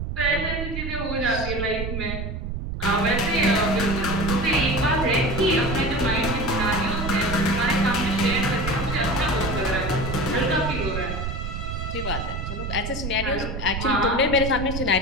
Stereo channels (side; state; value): right; noise; rumble, 5 dB below the sound